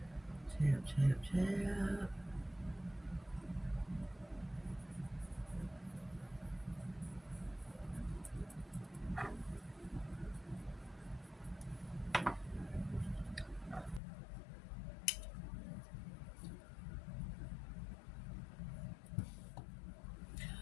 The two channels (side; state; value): right; drops out; at 14.0 s